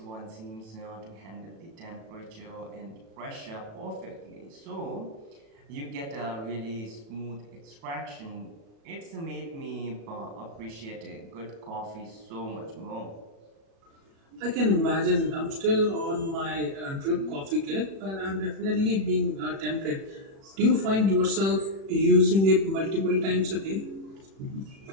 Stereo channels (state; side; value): late; left; 36 ms